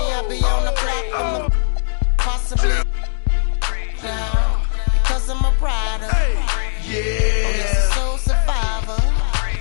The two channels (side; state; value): right; silent; 67 dB below the other